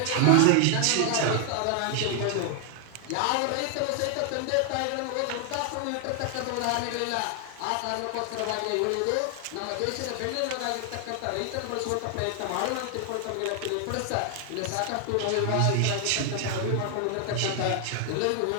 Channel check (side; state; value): both; different; correlation 0.00